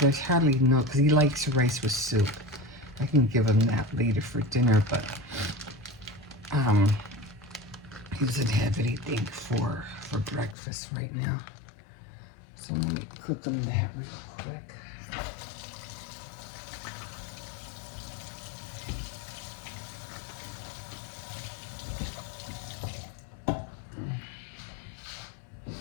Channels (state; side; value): drops out; right; at 10.6 s